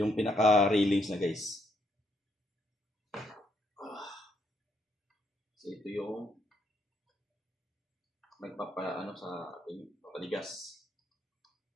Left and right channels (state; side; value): normal; both; correlation 0.74